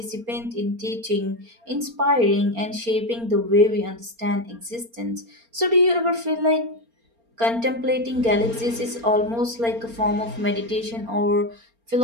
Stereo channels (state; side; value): late; left; 4.3 ms